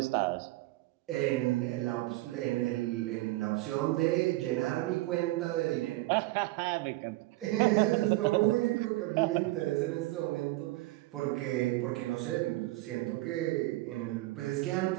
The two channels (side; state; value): left; quieter; 19.3 dB